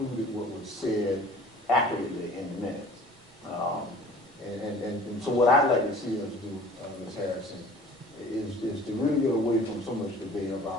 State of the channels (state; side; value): normal; both; correlation 0.47